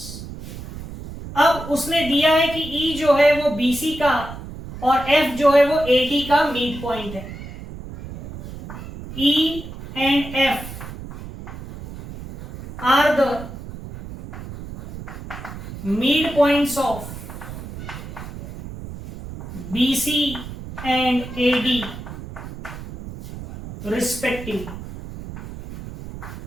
अब उसने दिया है कि ई जो है वो बीसी का और एफ जो है वो एडी का मिड पॉइंट है। E and F are the mid points of BC and AD respectively.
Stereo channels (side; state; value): right; noise; rumble, 11 dB below the sound